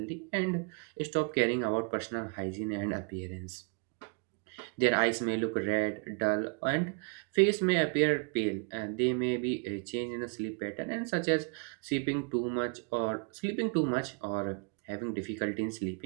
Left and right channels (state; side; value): quieter; left; 36.3 dB